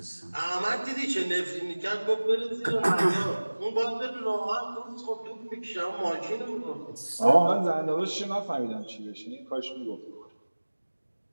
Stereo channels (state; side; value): inverted; both; correlation -1.00